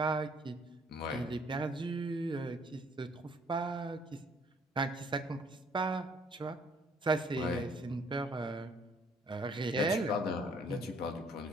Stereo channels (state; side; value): normal; both; correlation 0.62